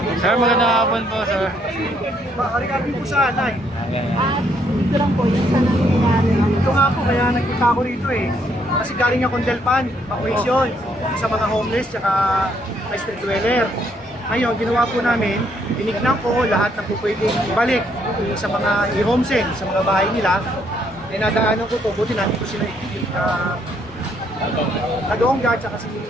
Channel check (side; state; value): both; normal; correlation 0.70